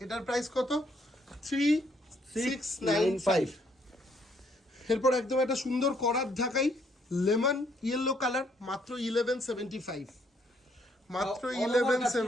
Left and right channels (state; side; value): normal; both; correlation 0.69